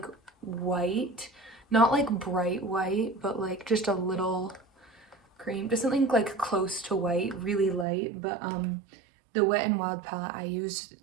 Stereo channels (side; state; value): left; drops out; at 7.9 s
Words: white, not like bright white, but like just a little cream, just something like close to white, really light. But the Wet n Wild palette I use,